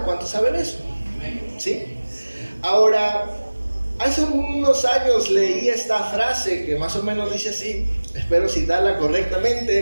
¿Cuántos saben eso? ¿Sí? Ahora, hace unos años leí esta frase que más o menos dice así, espero citarla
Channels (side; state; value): both; inverted; correlation -1.00